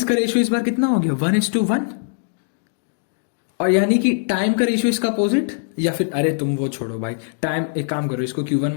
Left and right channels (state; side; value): silent; right; digital silence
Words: का रेशियो इस बार कितना हो गया? 1:1। और यानी कि टाइम का रेशियो इसका अपोजिट, या फिर अरे तुम वो छोड़ो भाई, टाइम एक काम करो, इसको Q1